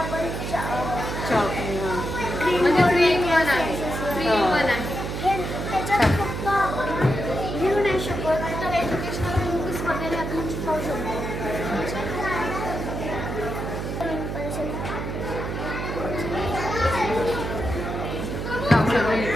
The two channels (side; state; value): right; noise; hum, 4 dB below the sound